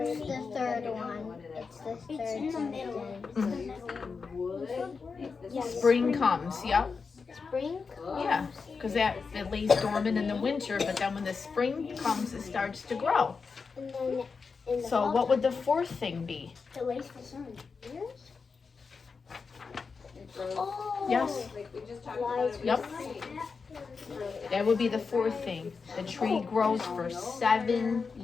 third one. It's the third in the middle. Yes. Spring comes, yep. Spring comes. Yeah, because it lays dormant in the winter, but then when the spring comes, it starts to grow. And then in the So fall what would the fourth thing be? it waits for sun. Yes. Oh. Yes, Like we just talked about. Lies. it Yep. That would be the fourth thing. The tree grows for 7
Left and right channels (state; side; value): quieter; right; 5.0 dB